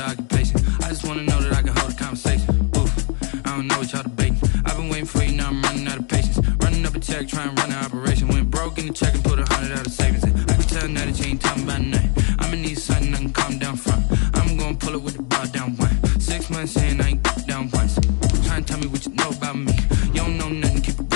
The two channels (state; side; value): quieter; right; 37.2 dB